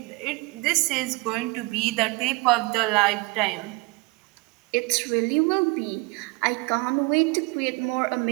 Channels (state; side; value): quieter; left; 25.5 dB